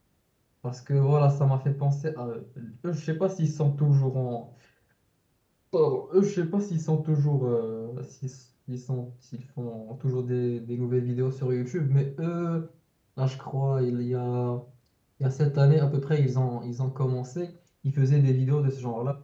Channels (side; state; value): both; identical; correlation 1.00